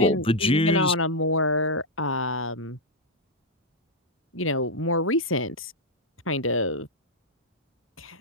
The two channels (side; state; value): both; normal; correlation -0.01